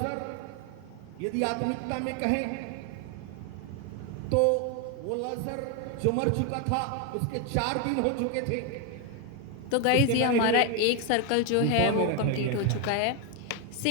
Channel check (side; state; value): both; different; correlation 0.01